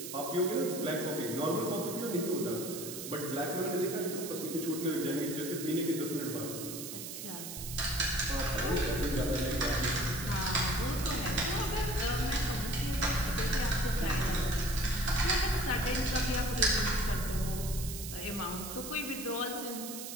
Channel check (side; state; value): right; noise; hiss, 8 dB below the sound